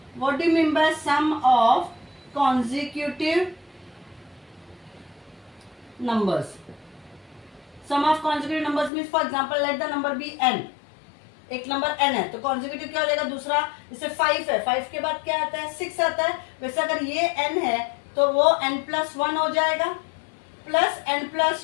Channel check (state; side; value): drops out; right; at 8.9 s